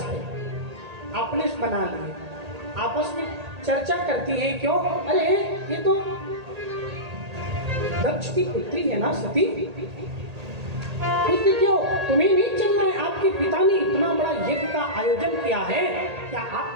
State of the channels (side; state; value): left; late; 1.8 ms